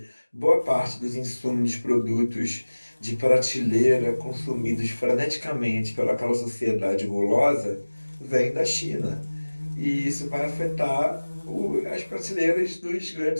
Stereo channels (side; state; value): both; inverted; correlation -1.00